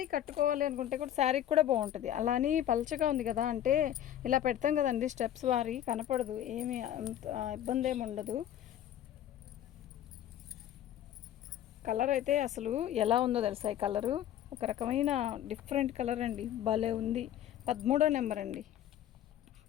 కట్టుకోవాలి అనుకుంటే కూడా శారీకి కూడా బాగుంటుంది. అలా అని పల్చగా ఉంది కదా అంటే ఇలా పెడతాం కదండి, స్టెప్స్ వారి కనపడదు, ఏమి అంత ఇబ్బంది ఏమి ఉండదు. కలర్ అయితే అసలు ఎలా ఉందో తెలుసా, ఈ కలరు ఒక రకమైన డిఫరెంట్ కలర్ అండి, భలే ఉంది. 13 నెంబర్ అండి.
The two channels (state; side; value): quieter; right; 11.3 dB